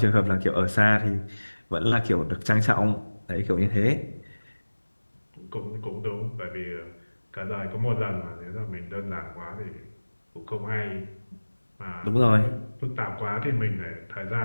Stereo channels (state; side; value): inverted; both; correlation -1.00